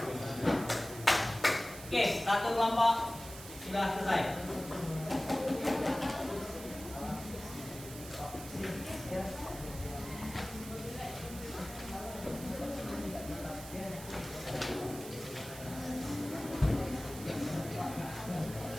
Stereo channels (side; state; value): right; noise; hiss, 13 dB below the sound